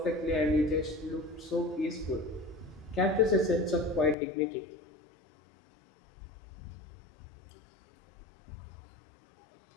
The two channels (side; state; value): right; drops out; at 4.2 s